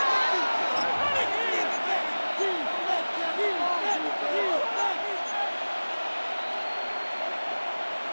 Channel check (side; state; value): both; inverted; correlation -1.00